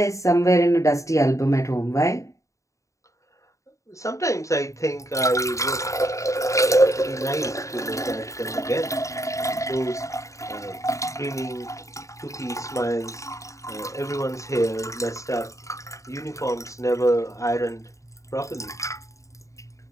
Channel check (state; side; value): late; right; 0.15 ms